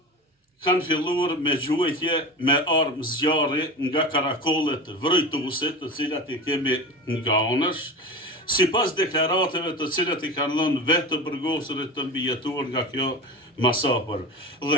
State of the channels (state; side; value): normal; both; correlation 0.29